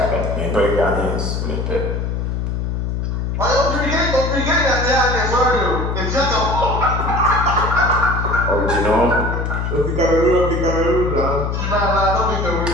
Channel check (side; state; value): left; noise; hum, 1 dB below the sound